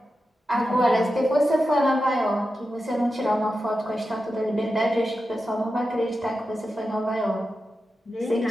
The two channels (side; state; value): both; normal; correlation 0.91